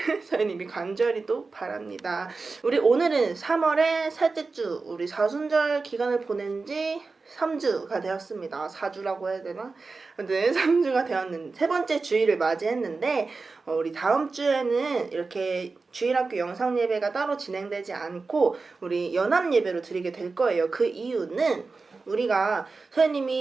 선생님이 간절히 또 바랍니다. 우리 오늘은 3월의 셋째 주, 우리 사순절 기간을 보낸 지 3주가 되었습니다. 4주라고 해야 되나? 아무튼 3주가 되었는데 세 번째 주일을 맞이했는데 우리 다음 주에는 이렇게 주일학교 영상 예배가 따로 진행되지 않고 우리 연합 예배로 드리게 될 거예요. 그 이유는 우리가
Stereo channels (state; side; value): quieter; left; 4.1 dB